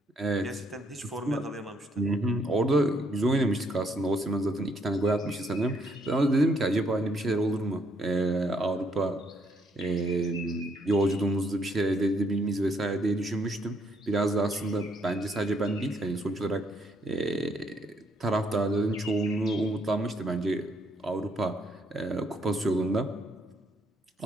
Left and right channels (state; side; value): normal; both; correlation 0.71